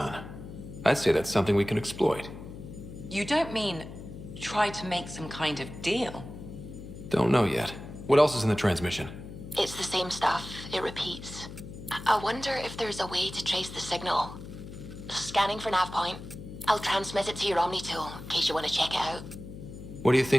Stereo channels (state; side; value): noise; left; hum, 12 dB below the sound